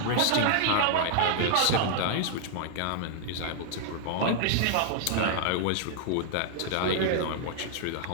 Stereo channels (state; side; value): different; both; correlation 0.00